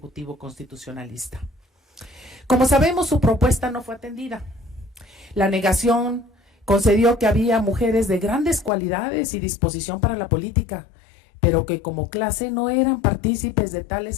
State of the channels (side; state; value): right; drops out; at 8.7 s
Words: constitucionalista. Como sabemos, su propuesta no fue atendida. La negación concedió que había mujeres de grandes cualidades y disposición para la política, pero que como clase no eran partícipes de